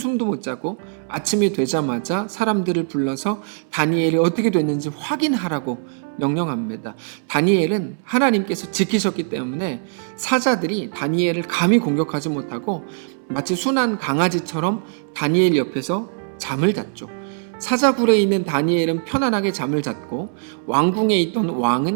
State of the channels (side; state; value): left; silent; 64 dB below the other